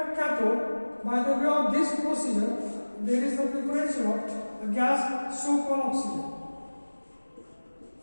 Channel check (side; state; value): both; inverted; correlation -1.00